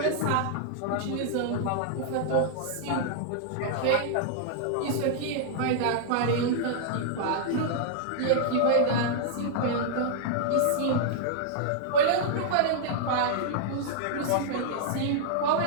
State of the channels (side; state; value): both; different; correlation -0.01